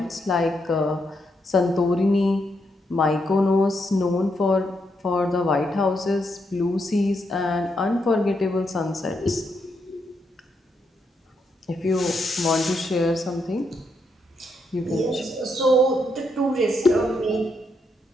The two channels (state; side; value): normal; both; correlation 0.79